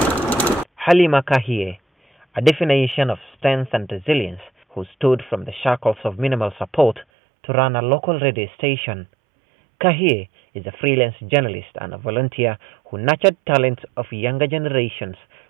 Halima Kahiye, a definition of strength and resilience, who stood from the shackles of minimal support to run a local radio station. Kahiye is a freelance journalist and a volunteer who nurtured talents of younger generations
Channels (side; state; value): left; drops out; at 7.1 s